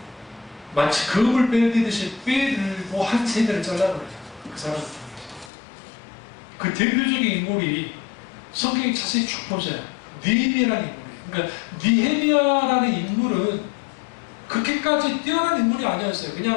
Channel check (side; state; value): right; drops out; at 5.5 s